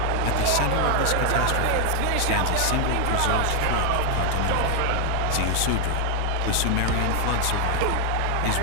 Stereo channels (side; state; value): both; different; correlation 0.00